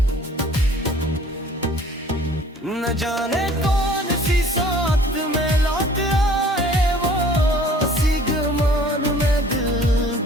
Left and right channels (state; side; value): normal; both; correlation 0.52